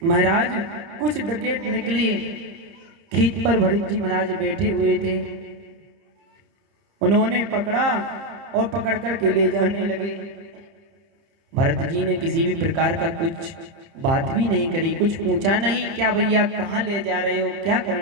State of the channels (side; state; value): left; late; 30 ms